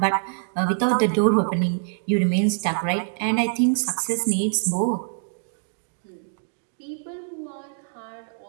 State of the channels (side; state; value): left; silent; digital silence